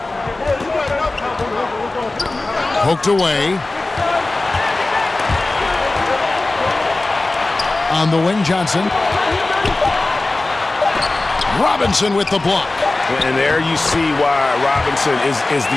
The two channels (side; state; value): right; quieter; 3.1 dB